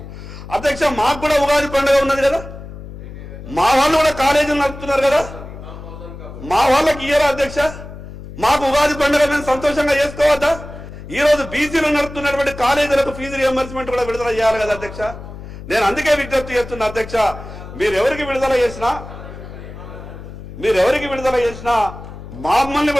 అధ్యక్ష. మాకు కూడా ఉగాది పండుగ ఉన్నది కదా, మా వాళ్ళు కూడా కాలేజీలు నడుపుతున్నారు కదా, మా వాళ్ళకి ఇయ్యరా అధ్యక్ష? మాకు ఉగాది పండుగ మేము సంతోషంగా చేసుకోవద్దా? ఈ రోజు బీసీలు నడుపుతున్నటువంటి కాలేజీలకు ఫీజు రియంబర్స్మెంట్ కూడా విడుదల చేయాలి కదా అధ్యక్ష. నేను అందుకే విజ్ఞప్తి చేస్తున్నా అధ్యక్ష, మీరు ఎవరికి విడుదల చేసినా మమ్మల్ని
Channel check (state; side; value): noise; left; hum, 13 dB below the sound